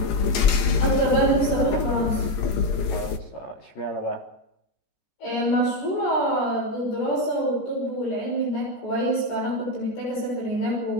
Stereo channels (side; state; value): right; late; 16 ms